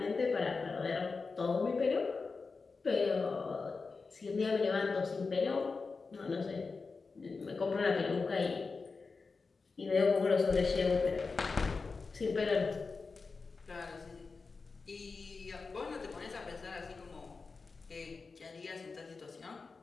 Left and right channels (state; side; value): quieter; right; 4.4 dB